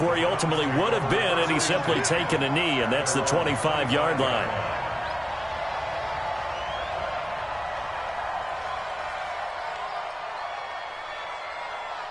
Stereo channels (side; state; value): both; identical; correlation 1.00